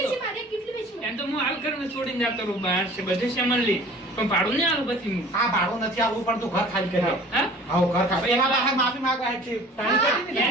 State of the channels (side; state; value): both; normal; correlation 0.47